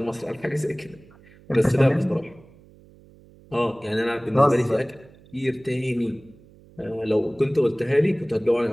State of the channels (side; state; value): right; noise; hum, 25 dB below the sound